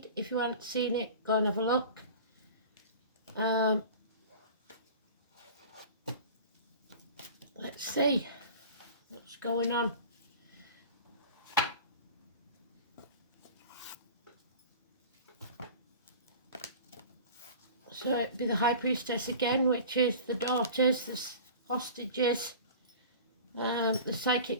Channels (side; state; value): both; inverted; correlation -0.38